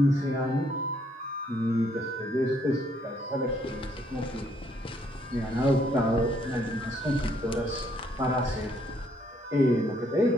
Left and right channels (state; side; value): normal; both; correlation 0.69